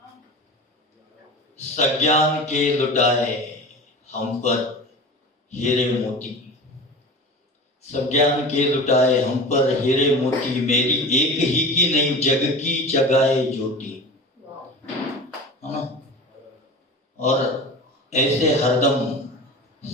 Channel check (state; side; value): normal; both; correlation 0.33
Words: सज्ञान के लुटाए हम पर हीरे मोती, सज्ञान के लुटाए हम पर हीरे मोती, मेरी एक ही की नहीं जग की जगाए ज्योति, है ना। और ऐसे हरदम